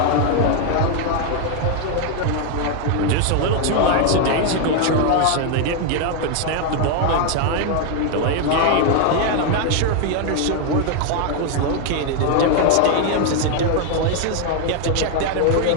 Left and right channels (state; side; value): different; both; correlation 0.00